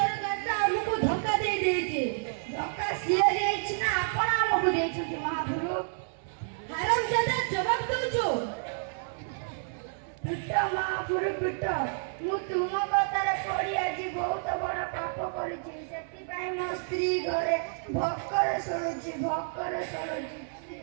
ତ ଆମକୁ ଧୋକା ଦେଇଛି ଧୋକା ସିଏ ଦେଇଛି ନା ଆପଣ ଆମକୁ ଦେଇଛନ୍ତି ମହାପୁରୁ ହାରାମଜାଦା ଜବାବ ଦଉଛୁ ପିଟ ମହାପୁରୁ ପିଟ ମୁଁ ତୁମ କଥାରେ ପଡ଼ି ଆଜି ବହୁତ ବଡ଼ ପାପ କରିଛି ସେଥିପାଇଁ ମୋ ସ୍ତ୍ରୀ ଘରେ ଭୋକରେ ଶୋଇଛି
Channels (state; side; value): silent; left; 58 dB below the other